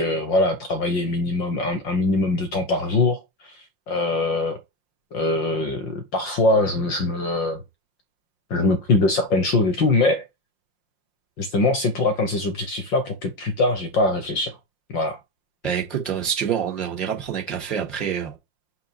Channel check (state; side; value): late; right; 5.6 ms